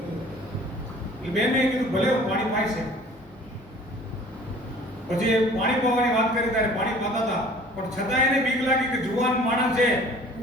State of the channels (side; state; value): both; normal; correlation 0.49